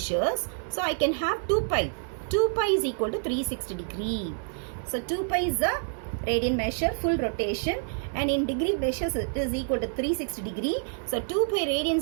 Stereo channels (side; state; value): left; silent; 59 dB below the other